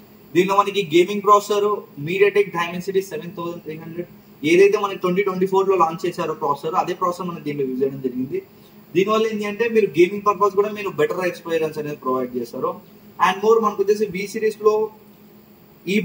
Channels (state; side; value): identical; both; correlation 1.00